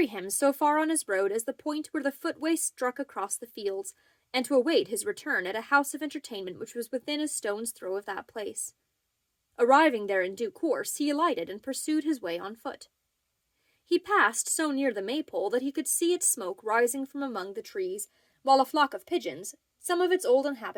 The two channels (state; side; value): identical; both; correlation 1.00